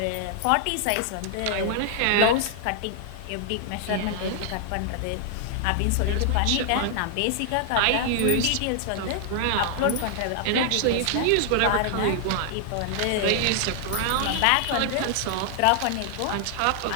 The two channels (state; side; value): different; both; correlation 0.00